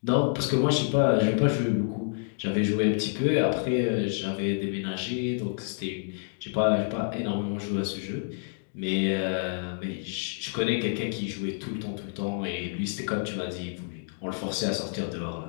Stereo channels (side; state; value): right; silent; digital silence